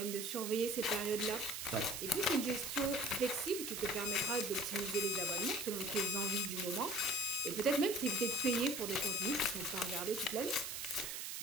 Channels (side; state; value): right; noise; hiss, 5 dB below the sound